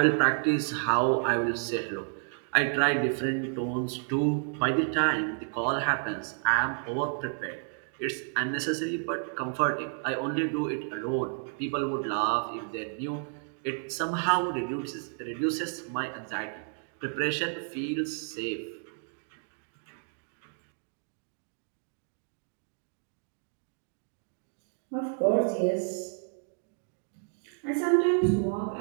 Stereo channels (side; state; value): left; silent; 57 dB below the other